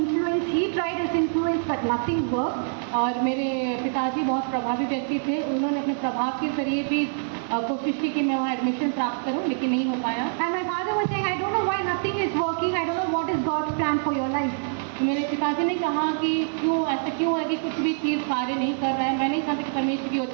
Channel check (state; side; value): silent; left; digital silence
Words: He tried his influence, but nothing worked. और मेरे पिताजी बहुत प्रभावी व्यक्ति थे, उन्होंने अपने प्रभाव के जरिए भी कोशिश की कि मैं वहाँ एडमिशन प्राप्त करूँ, लेकिन नहीं हो पाया। And my father was saying, I don't know why nothing is working. I don't know what is God's plan for your life. तो मेरे पिताजी ने कहा कि क्यों ऐसा क्यों हो रहा है कि कुछ भी चीज़ कार्य नहीं कर रहा है। मैं नहीं जानती कि परमेश्वर की